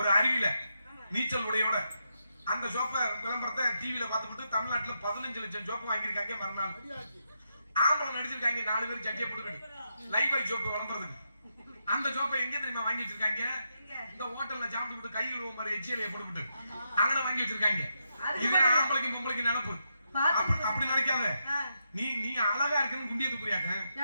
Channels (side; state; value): both; inverted; correlation -0.83